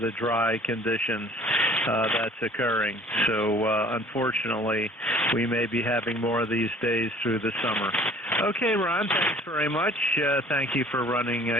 the dry conditions that's occurring. So unfortunately, we may be having more of these days through the summer. Okay, Ron, thanks very much. Thank you for running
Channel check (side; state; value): both; normal; correlation 0.51